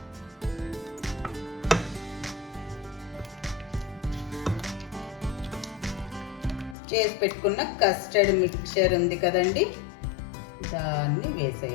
చేసి పెట్టుకున్న కస్టర్డ్ మిక్చర్ ఉంది కదండి, దాన్ని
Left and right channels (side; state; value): right; drops out; at 6.8 s